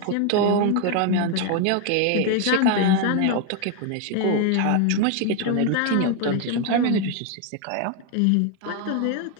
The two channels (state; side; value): different; both; correlation 0.01